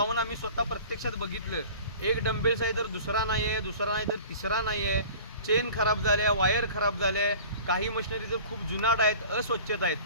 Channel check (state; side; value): inverted; both; correlation -0.43